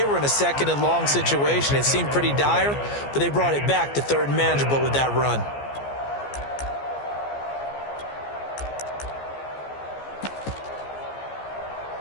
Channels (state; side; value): late; right; 14 ms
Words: were in a 2nd and long situation. It seemed pretty dire, but they brought it back to 3rd and manageable with that run.